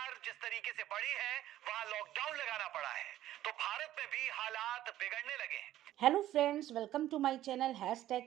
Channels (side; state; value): left; quieter; 13.5 dB